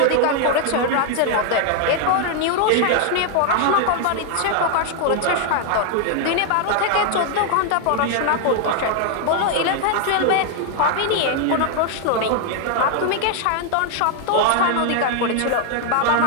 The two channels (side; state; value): both; different; correlation 0.00